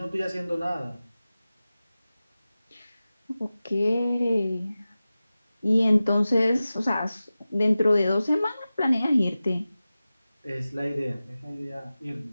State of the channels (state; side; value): inverted; both; correlation -0.95